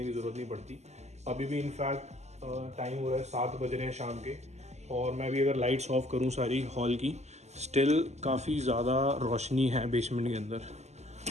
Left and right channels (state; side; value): late; left; 0.33 ms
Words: की ज़रूरत नहीं पड़ती। अभी भी इनफैक्ट टाइम हो रहा है 7 बज रहे हैं शाम के, और मैं भी अगर लाइट्स ऑफ करूँ सारी हॉल की, स्टिल काफ़ी ज़्यादा रोशनी है बेसमेंट के अंदर।